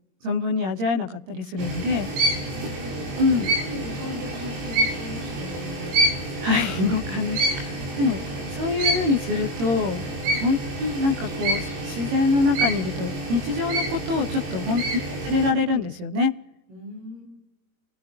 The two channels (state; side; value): late; left; 22 ms